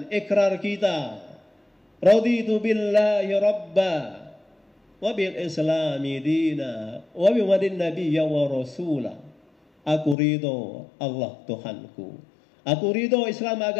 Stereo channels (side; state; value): right; drops out; at 10.2 s